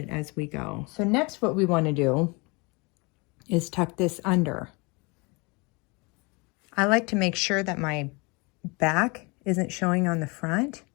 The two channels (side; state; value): right; quieter; 28.2 dB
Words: as we go. So next what we want to do is tuck this under. I like to make sure that my back isn't showing on the front.